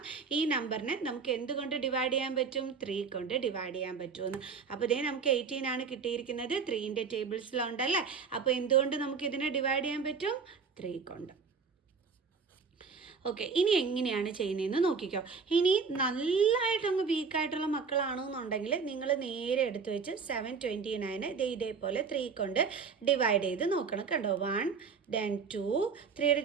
ഈ നമ്പറിനെ നമുക്ക് എന്തുകൊണ്ട് ഡിവൈഡ് ചെയ്യാൻ പറ്റും? 3 കൊണ്ട് ഡിവൈഡ് ചെയ്യാൻ പറ്റുമെന്ന്. അപ്പോൾ ഇതേ നമുക്ക് 18 ആണ് കിട്ടിയിരിക്കുന്നത്. 3ൻ്റെ ടേബിൾസിലുണ്ടല്ലേ. അപ്പോൾ എന്തുകൊണ്ട് നമുക്ക് ഇതിനെ ഡിവൈഡ് ചെയ്യാൻ പറ്റും? 3 കൊണ്ട്. ഓക്കെ, ഇനി എങ്ങനെയാണ് ചെയ്യുന്നതെന്ന് നോക്കിക്കോ. ഇനി നല്ലതായിട്ടങ്ങ് വീക്കായിട്ടുള്ള മക്കളാണെന്നുണ്ടെങ്കിൽ നിങ്ങൾ നേരെ എടുത്ത് വെച്ച് 729 ഇതേപോലെ 3 കൊണ്ട് ഡിവൈഡ് ചെയ്ത് നോക്കണം. കണ്ടോ? 1 then 2. 3യുടെ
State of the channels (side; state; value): left; quieter; 5.5 dB